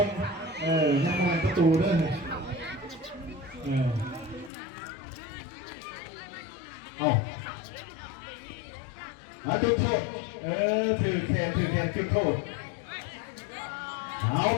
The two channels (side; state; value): right; drops out; at 4.5 s